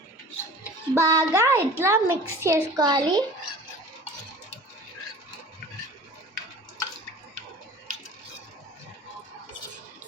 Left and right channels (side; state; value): both; normal; correlation 0.41